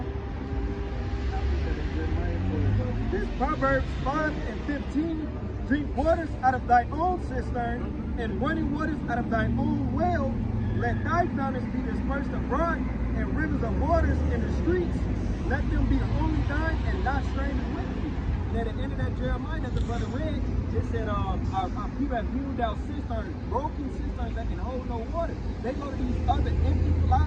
This Proverbs 5:15. Drink waters out of thy own cistern, and running waters out of thine own well. Let thy fountains be dispersed abroad, and rivers of waters in the streets. Let them be only thine, and not strangers with thee. And at the end of that Jeremiah that the brother read, it said, our people have hewed out cisterns, broken cisterns that can hold no water. They go to these other empty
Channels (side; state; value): both; identical; correlation 1.00